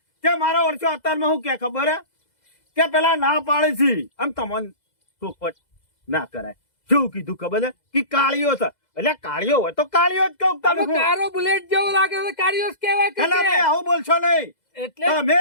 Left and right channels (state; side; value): late; right; 2.0 ms